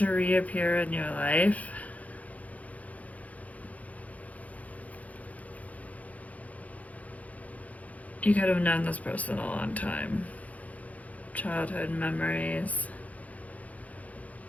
reappear in your life. You could have known this person a long time. Childhood memories.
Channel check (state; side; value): late; right; 0.071 ms